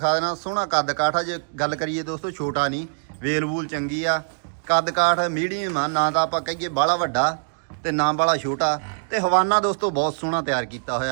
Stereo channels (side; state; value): left; silent; digital silence